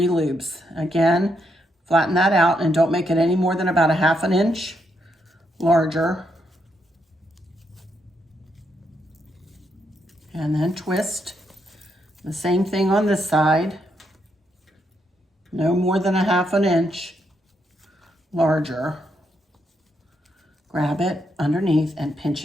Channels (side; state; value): both; normal; correlation 0.78